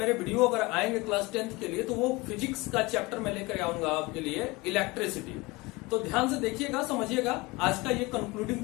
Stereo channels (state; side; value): quieter; right; 23.3 dB